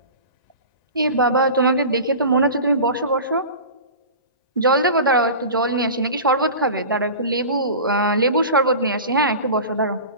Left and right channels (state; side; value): inverted; both; correlation -0.34